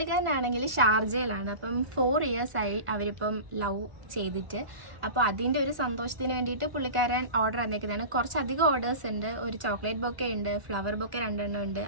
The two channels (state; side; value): late; left; 1.4 ms